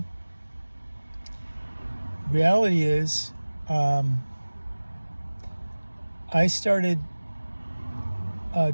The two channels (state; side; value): inverted; both; correlation -1.00